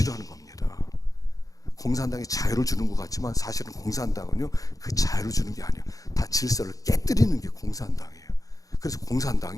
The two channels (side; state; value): right; late; 0.17 ms